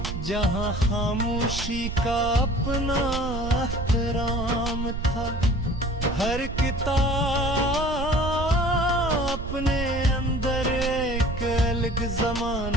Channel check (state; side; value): noise; right; rumble, 6 dB below the sound